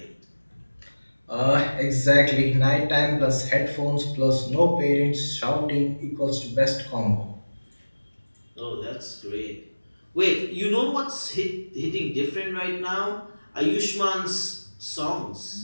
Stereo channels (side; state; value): both; inverted; correlation -1.00